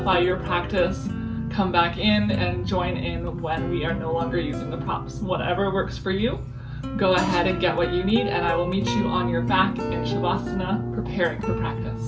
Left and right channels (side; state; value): both; identical; correlation 1.00